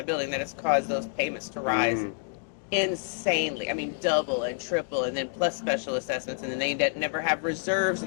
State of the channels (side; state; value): right; silent; 59 dB below the other